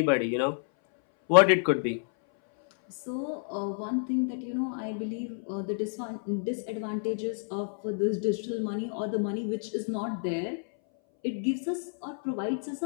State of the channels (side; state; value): right; silent; 58 dB below the other